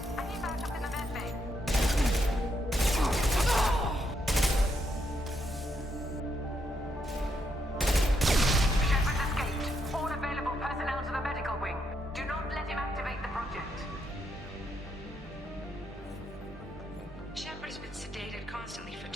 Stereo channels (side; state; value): both; normal; correlation 0.78